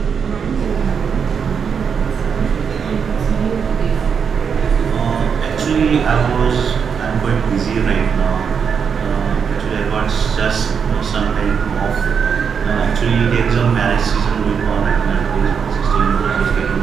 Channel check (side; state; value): left; quieter; 6.6 dB